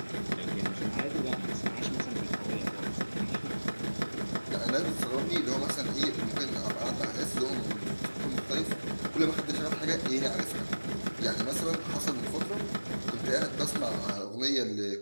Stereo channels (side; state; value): both; inverted; correlation -1.00